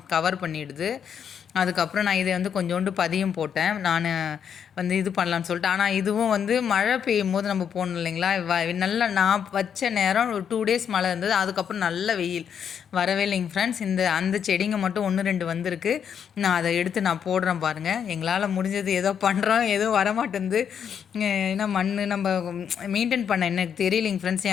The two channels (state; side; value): quieter; right; 7.9 dB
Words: கவர் பண்ணிடுது. அதுக்கப்புறம் நான் இதை வந்து கொஞ்சோண்டு பதியம் போட்டேன். நான் வந்து இது பண்ணலான்னு சொல்லிட்டு. ஆனால் இதுவும் வந்து மழை பெய்யும் போது நம்ம போகணும் இல்லைங்களா? நல்லா நான் வச்ச நேரம் ஒரு 2 டேஸ் மழை இருந்தது. அதுக்கப்புறம் நல்ல வெயில் வரவே இல்லைங்க ஃப்ரெண்ட்ஸ். அந்த செடிங்க மட்டும் 1, 2 வந்திருக்கு. நான் அதை எடுத்து நான் போடுறேன் பாருங்கள். எங்களால் முடிஞ்சது ஏதோ பண்ணுறோம், எதுவும் வரமாட்டேங்குது. ஏன்னா நம்ம மெயின்டைன் பண்ண எனக்கு தெரியலைங்க ஃப்ரெண்ட்ஸ்.